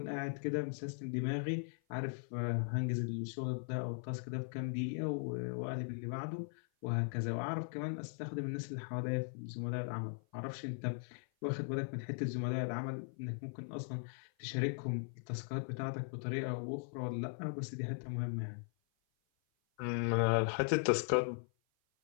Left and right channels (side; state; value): right; silent; 52 dB below the other